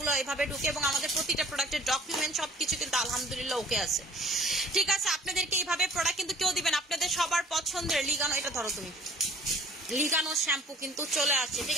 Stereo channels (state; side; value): normal; both; correlation 0.52